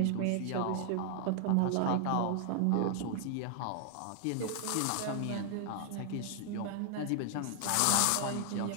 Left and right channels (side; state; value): both; different; correlation 0.00